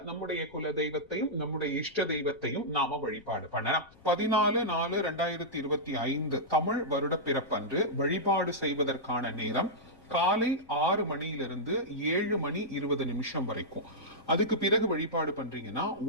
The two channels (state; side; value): noise; left; rumble, 26 dB below the sound